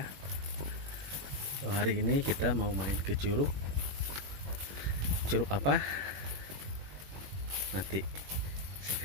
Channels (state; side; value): late; left; 21 ms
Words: So, hari ini kita mau main ke curug. Curug apa? Nanti saya